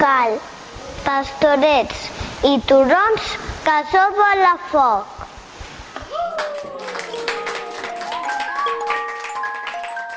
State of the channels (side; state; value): both; identical; correlation 1.00